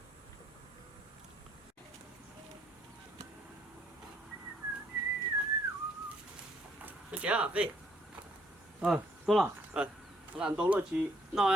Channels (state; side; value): normal; both; correlation 0.67